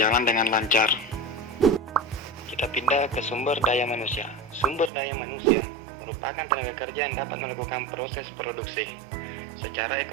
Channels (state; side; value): drops out; left; at 4.9 s